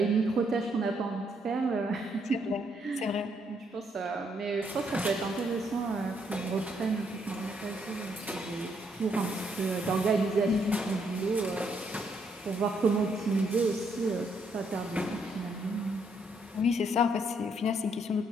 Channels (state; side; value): normal; both; correlation 0.73